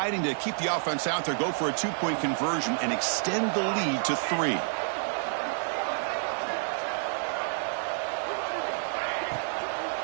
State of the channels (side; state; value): left; silent; digital silence